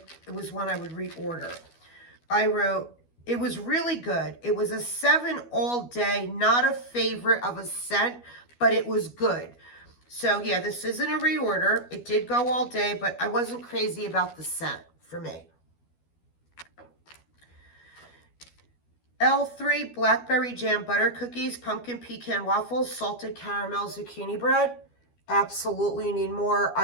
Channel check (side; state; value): right; late; 12 ms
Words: it was one I would reorder. I wrote, it was really good. It was a 7 all day, not a favorite of a scent, but it was good. So yeah, this isn't a reorder. It did go all day, but I wasn't crazy about the scent for me. L3 Blackberry Jam Butter Cookies, Pumpkin Pecan Waffles, Salted Caramel Zucchini Bread. Absolutely need more.